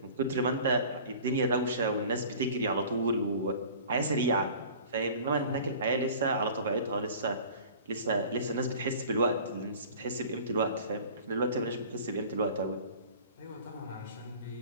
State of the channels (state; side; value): inverted; both; correlation -0.44